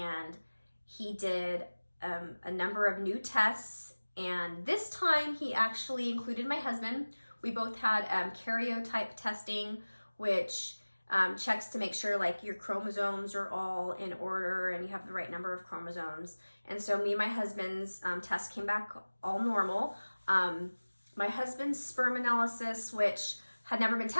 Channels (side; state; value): both; inverted; correlation -1.00